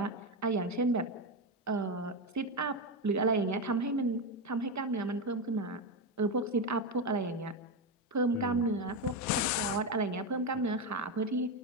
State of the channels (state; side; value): normal; both; correlation 0.11